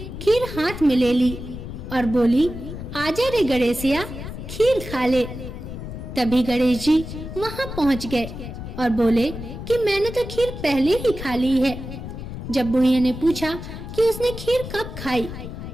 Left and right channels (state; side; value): noise; left; rumble, 9 dB below the sound